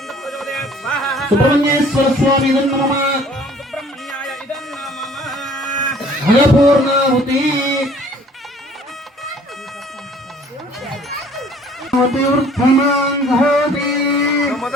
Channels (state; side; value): normal; both; correlation 0.54